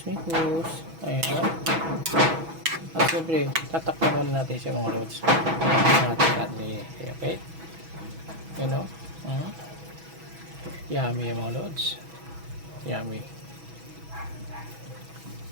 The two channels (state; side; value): late; left; 6.1 ms